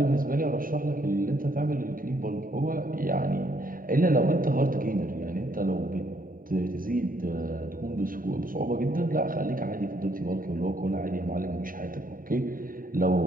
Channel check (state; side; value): late; left; 0.41 ms